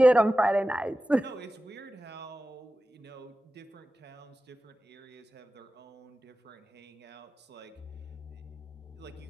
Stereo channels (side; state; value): both; normal; correlation 0.95